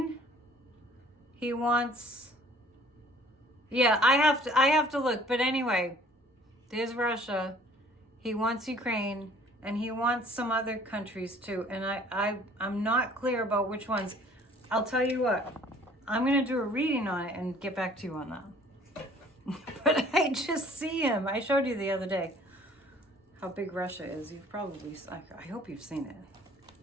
He wants, yeah, I have to look. But anyway, there's Russia. He wants Ukraine and he wants some other countries too. And I'm not clear about which ones. I'll tell you what, I'm going to do a reading on it and get back to you on that. But I just see him. I showed you the other day how big Russia is. You've probably, I hope you've seen it.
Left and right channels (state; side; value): normal; both; correlation 0.54